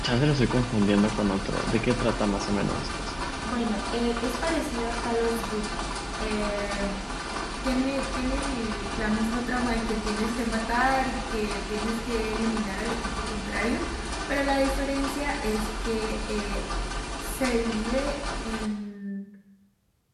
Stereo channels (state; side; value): identical; both; correlation 1.00